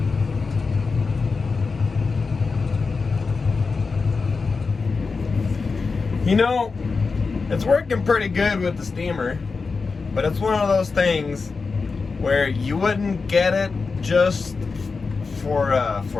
You know, it's working pretty good with the steamer, but it's one of those things where you wouldn't get it just for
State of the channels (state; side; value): quieter; right; 4.5 dB